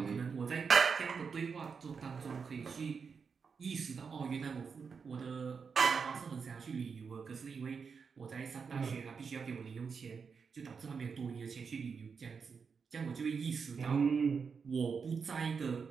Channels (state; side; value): quieter; left; 5.7 dB